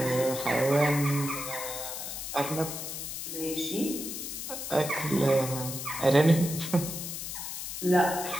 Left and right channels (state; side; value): noise; left; hiss, 6 dB below the sound